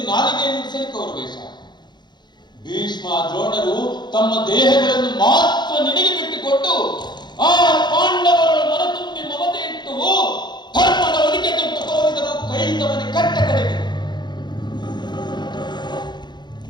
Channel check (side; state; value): right; late; 0.21 ms